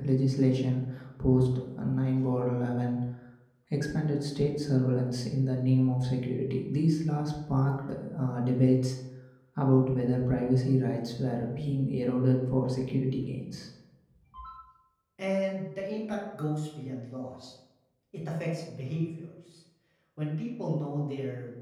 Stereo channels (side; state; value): both; identical; correlation 1.00